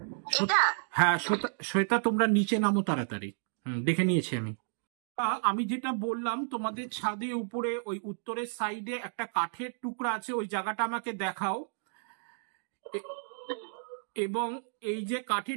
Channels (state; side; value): silent; left; digital silence